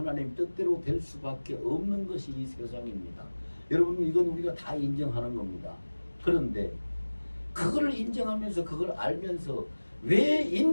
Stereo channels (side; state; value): both; inverted; correlation -1.00